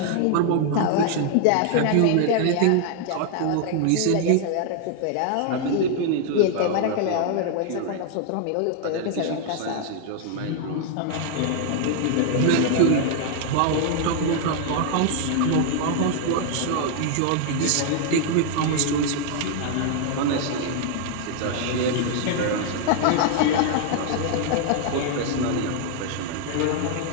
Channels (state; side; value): different; both; correlation 0.00